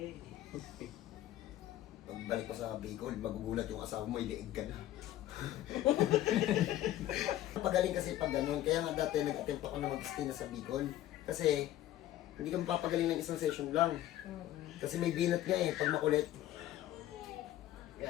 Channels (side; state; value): right; quieter; 13.5 dB